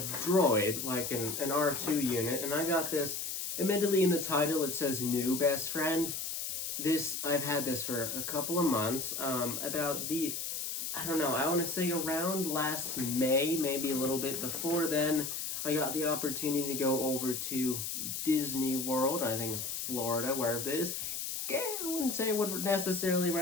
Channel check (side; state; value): left; noise; hiss, 4 dB below the sound